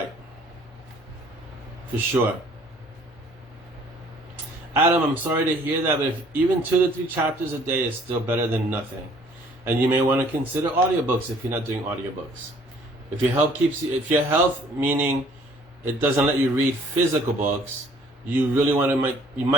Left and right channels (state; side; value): normal; both; correlation 0.57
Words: For sure. Adam, I'm sorry to hear that, but if even 2 to 3 chapters a day is still better than nothing. And you may want to consider audiobooks if you're not doing audiobooks. If your health, meaning it doesn't let you read physical books, you